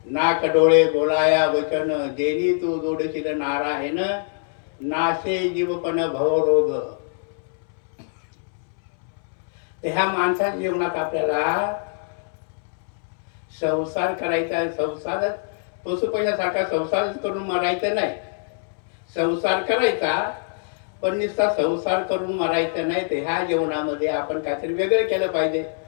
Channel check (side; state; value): right; silent; 63 dB below the other